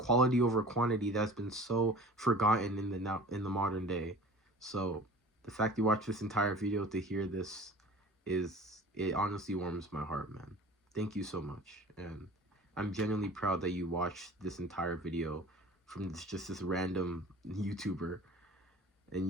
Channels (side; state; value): both; normal; correlation 0.42